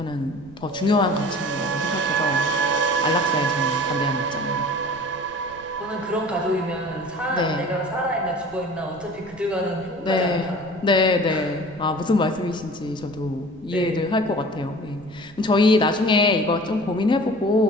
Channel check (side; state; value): right; noise; rumble, 22 dB below the sound